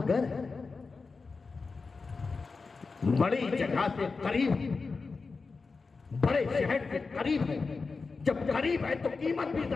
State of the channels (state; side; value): quieter; right; 4.4 dB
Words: है, बड़ी जगह से करीब, बड़े शहर से करीब है। जब करीब है तो कीमत भी